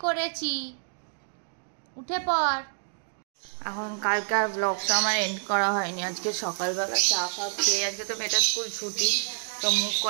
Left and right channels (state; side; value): silent; left; digital silence